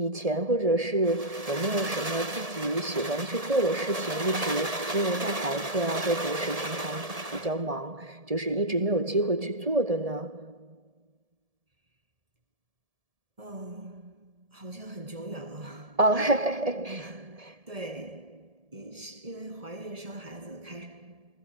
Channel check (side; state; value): left; late; 1.7 ms